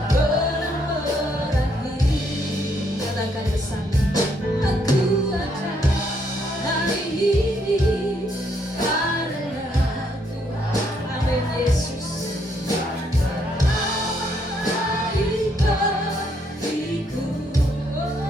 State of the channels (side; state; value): both; normal; correlation 0.72